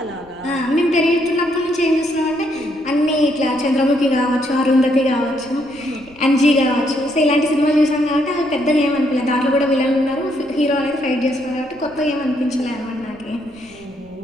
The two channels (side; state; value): left; noise; rumble, 26 dB below the sound